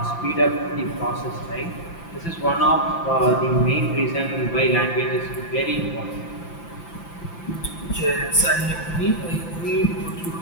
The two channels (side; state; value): right; late; 5.9 ms